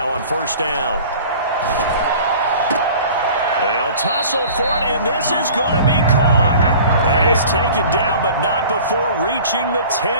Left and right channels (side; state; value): both; inverted; correlation -0.44